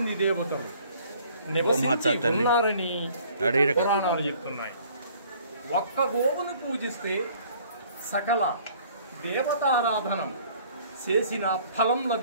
దేవతలు నివసించి ఉన్నారని పురాణాలు చెప్తున్నాయి. ఒక్క గోవును పూజిస్తే సకల దేవతారాధనం చేసిన ఫలం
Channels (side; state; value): both; inverted; correlation -0.56